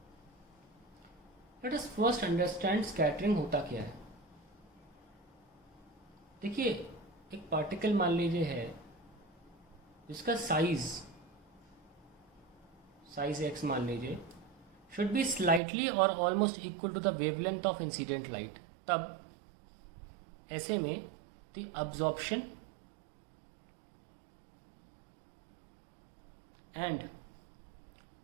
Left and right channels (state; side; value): drops out; left; at 15.6 s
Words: Let us first understand scattering होता क्या है। देखिए, एक particle मान लीजिए है जिसका साइज x मान लीजिए शुड बी स्लाइटली और almost equal to the wavelength of incident light. तब ऐसे में the absorption and